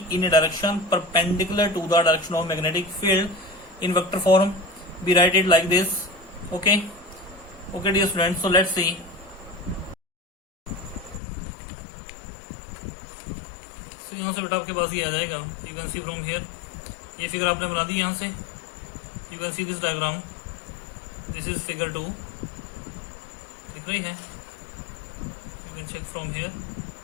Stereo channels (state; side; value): drops out; right; at 11.2 s